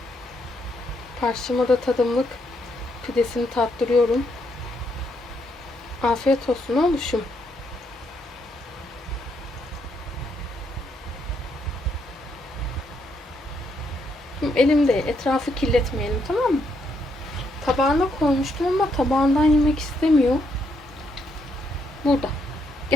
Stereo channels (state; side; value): normal; both; correlation 0.76